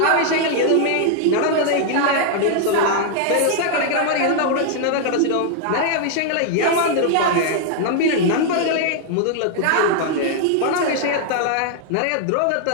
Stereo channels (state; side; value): different; both; correlation 0.00